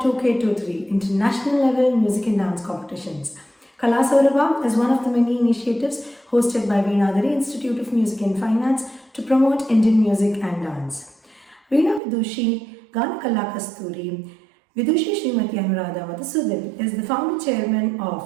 International Level Music and Dance Competitions. Kala Saurabha is one of the many initiatives hosted by Veenadhari Institute of Music and Fine Arts to promote Indian music and dance. Veena Vidushi, Gana Kala Kasturi, Vidushi Srimati Anuradha Madhusudan is the founder chairman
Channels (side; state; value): left; drops out; at 12.0 s